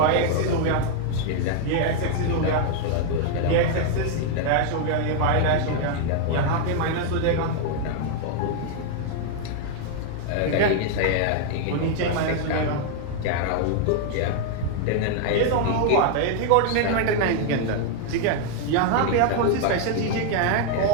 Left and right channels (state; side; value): different; both; correlation 0.00